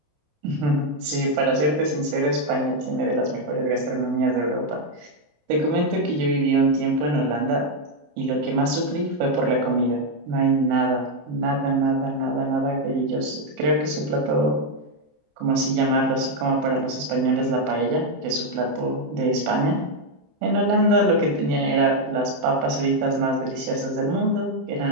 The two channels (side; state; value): left; late; 27 ms